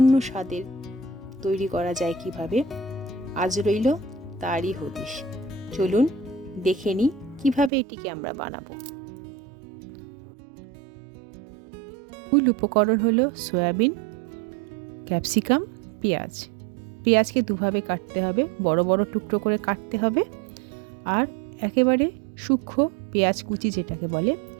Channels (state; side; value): drops out; left; at 7.7 s